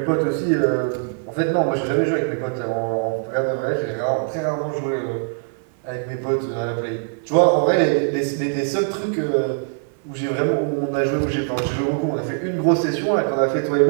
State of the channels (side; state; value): left; silent; 55 dB below the other